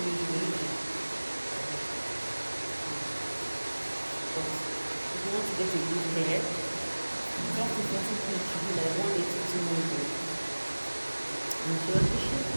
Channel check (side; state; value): both; inverted; correlation -1.00